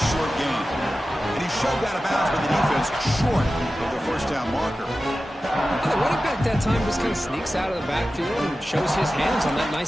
short gain. And he's shoved out of bounds by the defense short of the first down marker. And the running back that time just kind of sneaks out of the backfield and shows his hands on that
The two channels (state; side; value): normal; both; correlation 0.94